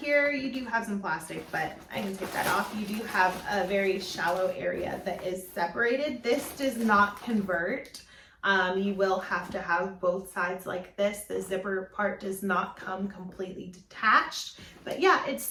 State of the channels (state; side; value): identical; both; correlation 1.00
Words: you do have some plastic, but I can take that off. You do have a very shallow area that is separated. This does not convert. You will have to have both sides like this. The zipper part does not come completely detached, but yeah, it's